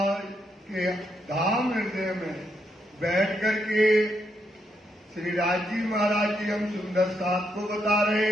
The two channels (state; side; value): normal; both; correlation 0.79